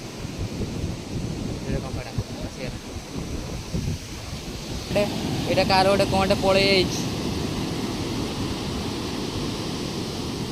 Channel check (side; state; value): both; identical; correlation 1.00